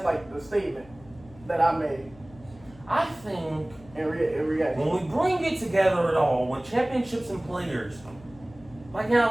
like, the statement that I made I think in reaction. when we bring it together at all, with championships and players, like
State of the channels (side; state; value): left; noise; hum, 22 dB below the sound